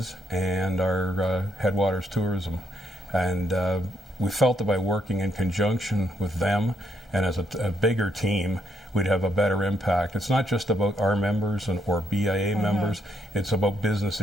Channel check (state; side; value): normal; both; correlation 0.75